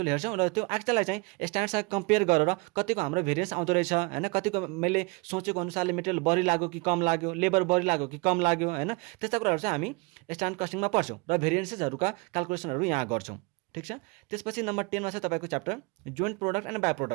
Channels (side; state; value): left; quieter; 27.8 dB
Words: हेर्छौँ र त्यो एक्चुअललाई चाहिँ स्ट्यान्डर्डसँग कम्पेयर गरेर कतिको हाम्रो भेरिएन्स आउँदो रहेछ हैन, कतिको मैले सोचेको अनुसारले मेटेरियल बढी लाग्यो कि कम लाग्यो, लेबर बढी लाग्यो कि कम लाग्यो हैन, त्यस्ता कुराहरू चाहिँ हामी स्ट्यान्डर्ड कस्टिङमा पढ्छौँ र भेरिएन्सेसहरूका क्याल्कुलेसनहरू यहाँ गर्छौँ। ठिक छ। त्यसपछि नम्बर 10 मा चाहिँ तपाईको chapter joint product and by